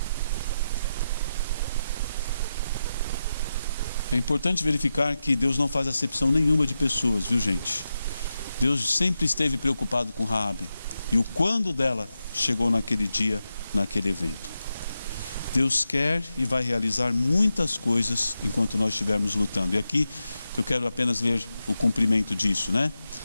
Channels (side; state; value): both; inverted; correlation -0.89